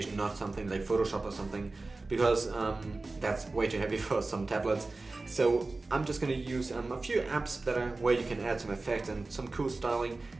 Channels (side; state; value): left; quieter; 3.4 dB